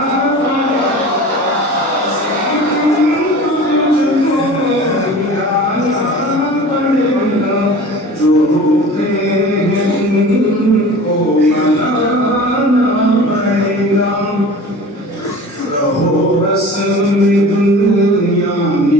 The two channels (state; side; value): normal; both; correlation 0.39